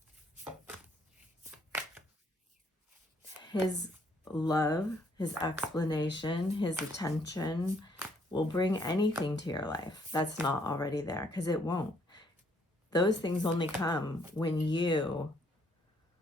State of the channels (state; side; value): normal; both; correlation 0.68